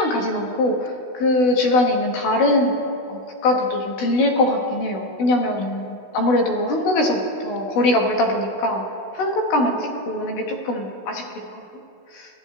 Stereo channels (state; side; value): late; right; 16 ms